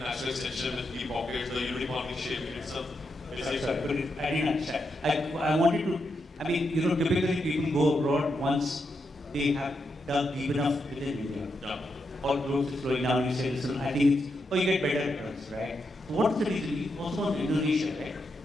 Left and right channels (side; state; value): both; normal; correlation 0.83